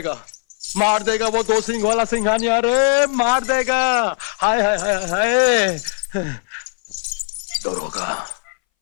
मार देगा वो 2 सिंह वाला सिंघानिया रे, मार देगा। हाय हाय हाय हाय। दरोगा,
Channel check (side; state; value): right; silent; 62 dB below the other